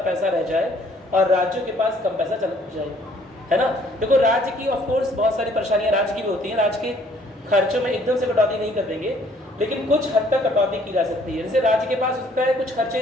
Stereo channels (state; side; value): normal; both; correlation 0.61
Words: पैसा रह जाए और राज्यों के पास कम पैसा चल जाए, है ना। देखो, राज्य की ऑफ कोर्स बहुत सारी परेशानियां राज्य की भी होती हैं, राज्य के खर्चों में एकदम से कटौती नहीं कर देंगे, लेकिन कुछ हद तक कटौती की जा सकती है। जैसे राज्य के पास उसका है, कुछ खर्चे